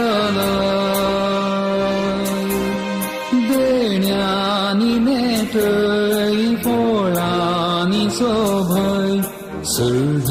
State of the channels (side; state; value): both; identical; correlation 1.00